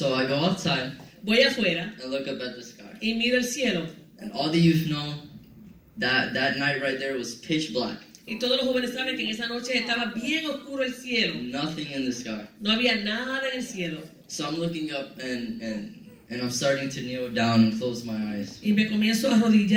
I go outside Voy afuera and look up at the sky. y miro el cielo. And all the youth know that night right there was pitch black. Y todos los jóvenes saben que en esa noche estaba bien oscuro el cielo. Nothing in the sky. No había nada en el cielo. So I'm looking up and I'm starting to kneel down and close my eyes. Y me comienzo a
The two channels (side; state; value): both; identical; correlation 1.00